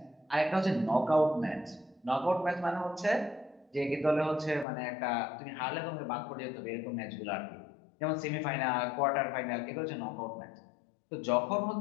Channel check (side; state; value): right; drops out; at 4.7 s